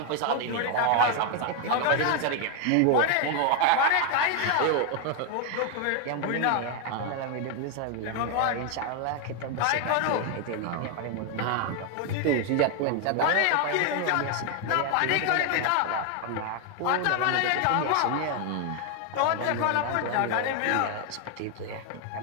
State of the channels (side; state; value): both; different; correlation 0.01